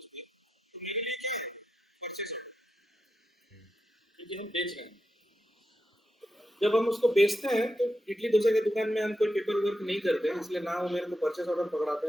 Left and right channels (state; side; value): normal; both; correlation 0.87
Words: भी, तो मेरे लिए क्या है? परचेस ऑर्डर, क्योंकि हम बेच रहे हैं। जब हम उसको बेचते हैं तो इडली डोसा की दुकान में हम कोई पेपर वर्क नहीं करते हैं, इसलिए ना वो मेरे को परचेस ऑर्डर पकड़ाते